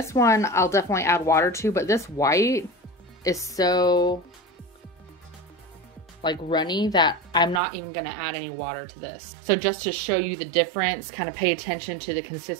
one, I'll definitely add water to, but this white is so like runny that I'm not even gonna add any water to this. So just to show you the difference, kind of pay attention to the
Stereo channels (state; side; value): drops out; left; at 7.6 s